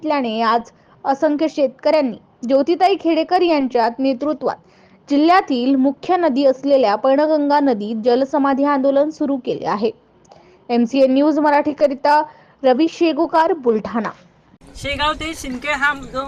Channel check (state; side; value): identical; both; correlation 1.00